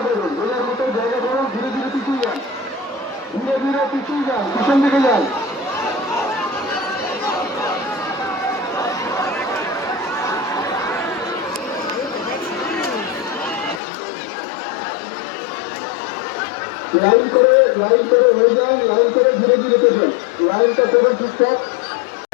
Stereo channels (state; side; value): drops out; right; at 13.8 s